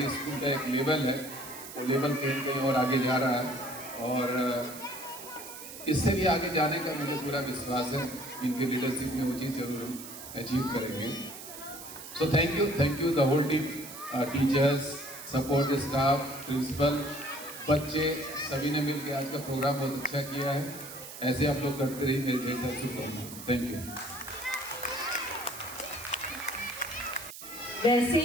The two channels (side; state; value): right; noise; hiss, 12 dB below the sound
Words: स्कूल का एक लेवल है वो लेवल कहीं कहीं और आगे जा रहा है, और इससे भी आगे जाने का मुझे पूरा विश्वास है। इनकी लीडरशिप में वो चीज़ जरूर अचीव करेंगे। So thank you the whole team, teachers, support staff, principal, बच्चे, सभी ने मिलकर आज का प्रोग्राम बहुत अच्छा किया है। ऐसे आप लोग करते रहिए, मेरे ढेर सारी शुभकामनाएं। Thank you. वैसे